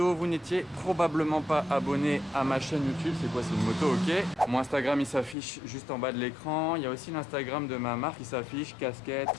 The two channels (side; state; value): right; drops out; at 5.4 s